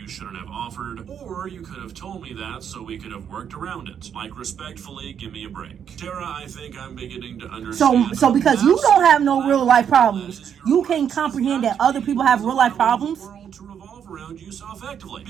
shouldn't have offered, or you could have told me that so we could have worked around it. Like, respectfully, give me a break. Tara, I think I'm beginning to understand. So because you don't have no real life problems, you can't comprehend that other people have real life problems? To revolve around you so effectively.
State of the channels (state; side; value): quieter; left; 8.3 dB